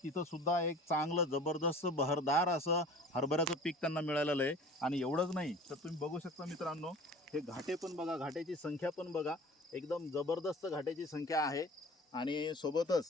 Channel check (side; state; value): both; normal; correlation 0.43